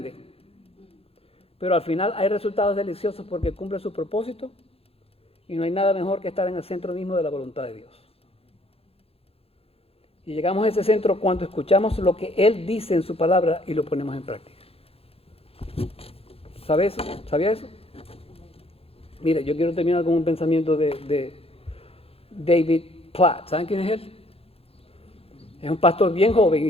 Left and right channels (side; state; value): right; late; 0.28 ms